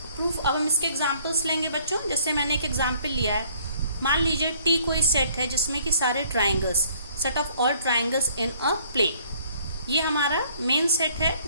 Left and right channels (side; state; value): both; inverted; correlation -0.60